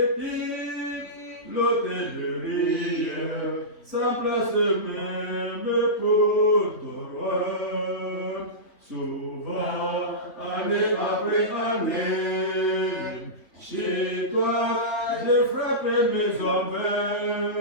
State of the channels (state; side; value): late; right; 3.2 ms